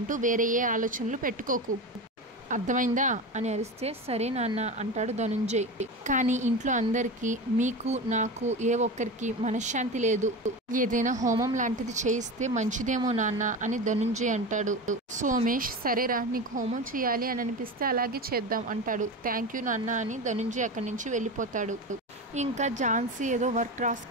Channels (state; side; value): normal; both; correlation 0.25